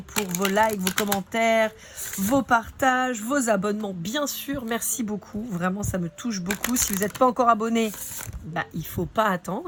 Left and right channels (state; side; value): identical; both; correlation 1.00